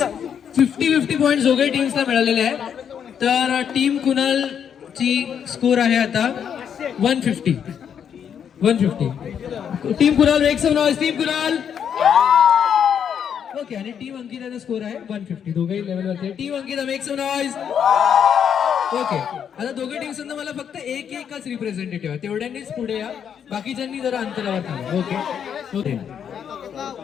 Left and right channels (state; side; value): quieter; right; 8.1 dB